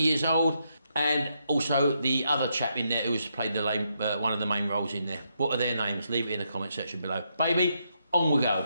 years old. And also the other chap in there who's played one of the main roles in there. What are their names? Leave it in the comment section below. Baby, on we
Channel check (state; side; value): inverted; both; correlation -0.79